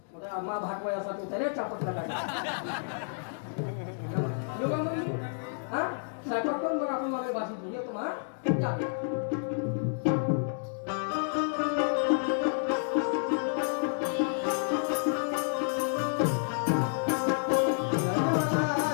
मा भाटवायासाठी होता रे चापटला साठवत करून मग आपण मला भाषण घेऊ येतो हा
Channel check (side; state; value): right; silent; digital silence